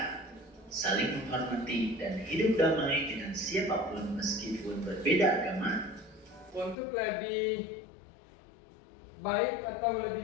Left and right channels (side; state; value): right; drops out; at 6.8 s